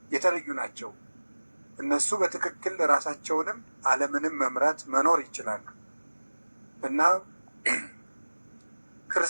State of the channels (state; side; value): inverted; both; correlation -1.00